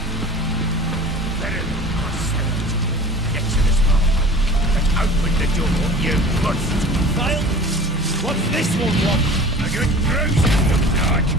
Get to this motherfucker. Let's open the door, you bust. Kyle, what's this one want? A good bruising, looks like.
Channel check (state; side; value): normal; both; correlation 0.42